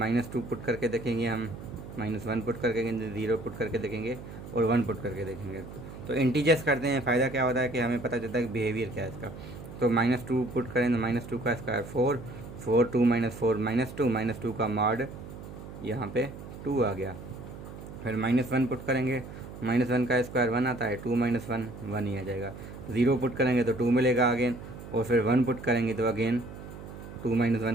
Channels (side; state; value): right; noise; hum, 13 dB below the sound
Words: पुट करके देखेंगे हम, -1 पुट करके देखेंगे, 0 पुट करके देखेंगे और 1 पुट करके देखेंगे। तो इंटीजर्स करते हैं, फ़ायदा क्या होता है कि हमें पता चलता है कि बिहेवियर क्या है इसका। तो -2 पुट करें तो -2 का स्क्वायर 4, 4 2 -4 -2, -2 का मॉड यहाँ पे 2 आ गया। फिर -1 पुट करेंगे, -1 का स्क्वायर 1 आता है, 2 - 1 1 ही आ जाएगा। 0 पुट करेंगे तो 2 मिलेगा अगेन, और फिर 1 पुट करेंगे तो अगेन 2 -